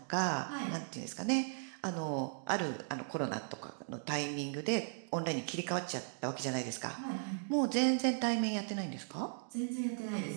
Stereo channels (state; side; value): silent; left; digital silence